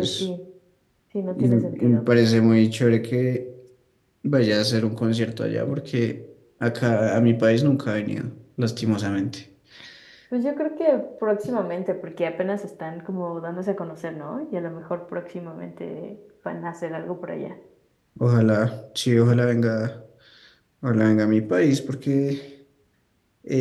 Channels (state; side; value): identical; both; correlation 1.00